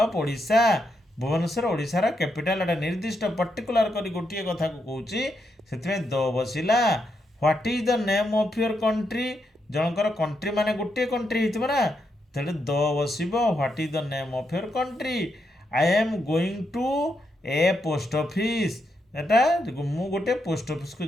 of Odisha, Bhubaneswar ଓଡ଼ିଶାର କ୍ୟାପିଟାଲ, ଏଟା ନିର୍ଦ୍ଦିଷ୍ଟ ପର୍ଟିକୁଲାର କରି ଗୋଟିଏ କଥାକୁ କହୁଛି, ସେଥିପାଇଁ ଦ ବସିଲା। What is the name of your country, ଜଣଙ୍କର କଣ୍ଟ୍ରି ମାନେ ଗୋଟିଏ କଣ୍ଟ୍ରି ହେଇଥିବ ନା, ତେଣୁ ଦ ବସିବ। What is the name of your country? I am going to a post office, ଏଟା ମୁଁ ଗୋଟେ ପୋଷ୍ଟ ଅଫିସକୁ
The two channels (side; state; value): both; normal; correlation 0.81